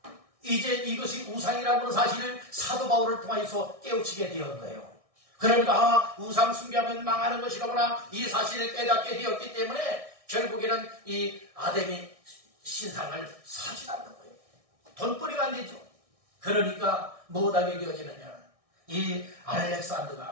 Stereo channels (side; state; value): left; late; 1.6 ms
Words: 이제 이것이 우상이라고 하는 사실을 사도 바울을 통해서 깨우치게 되었던 거예요. 그러니까 우상 숭배하면 망하는 것이라구나, 이 사실을 깨닫게 되었기 때문에 결국에는 이 아담이 신상을 사지 않는 거예요. 돈벌이가 안 되죠. 그러니까 못하게 되어지느냐, 이